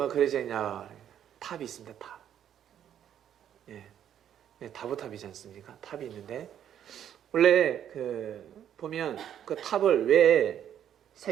그려져 있냐, 탑이 있습니다. 탑. 예, 다보탑이지 않습니까? 탑이 있는데 원래 보면 그 탑을 왜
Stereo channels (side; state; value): left; quieter; 9.9 dB